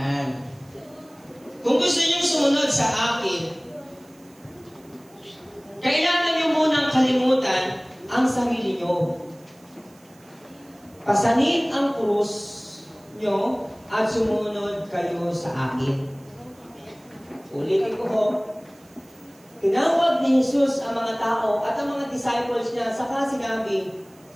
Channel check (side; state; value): right; noise; hiss, 29 dB below the sound